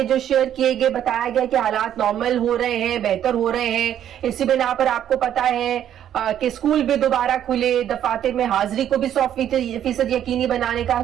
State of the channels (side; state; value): left; quieter; 10.4 dB